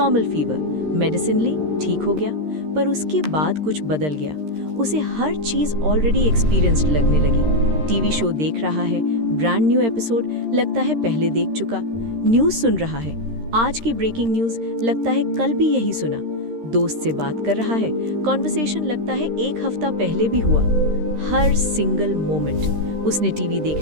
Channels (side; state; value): left; late; 13 ms